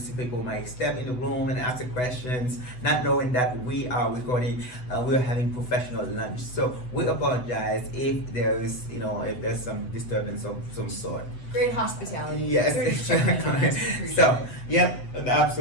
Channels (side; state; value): right; late; 8.0 ms